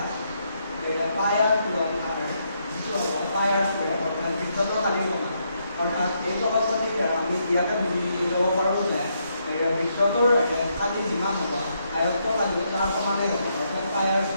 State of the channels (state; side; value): inverted; both; correlation -0.77